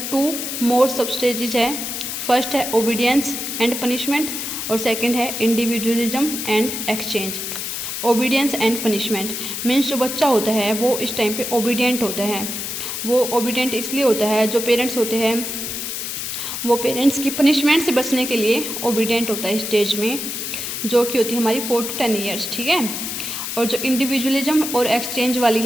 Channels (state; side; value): noise; left; hiss, 4 dB below the sound